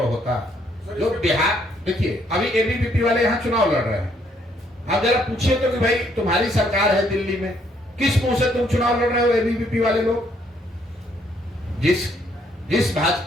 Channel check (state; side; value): normal; both; correlation 0.69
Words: होता। जो बिहार, देखिए अभी एबीवीपी वाले यहाँ चुनाव लड़ रहे हैं, आप जरा पूछिए तो कि भाई तुम्हारी सरकार है दिल्ली में, किस मुंह से तुम चुनाव लड़ रहे हो एबीवीपी वाले लोग? जिस